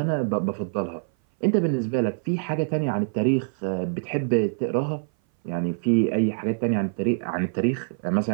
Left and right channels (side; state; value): left; silent; 58 dB below the other